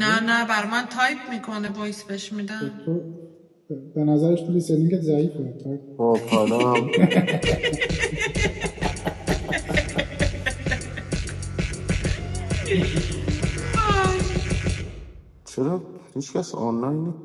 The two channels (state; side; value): identical; both; correlation 1.00